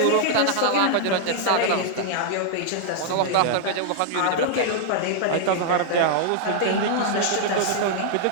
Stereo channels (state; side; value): different; both; correlation -0.01